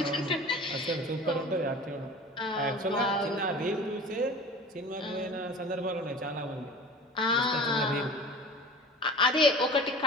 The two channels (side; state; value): both; normal; correlation 0.39